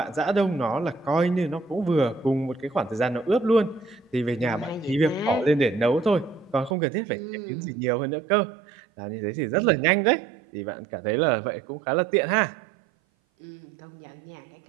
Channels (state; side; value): drops out; left; at 6.8 s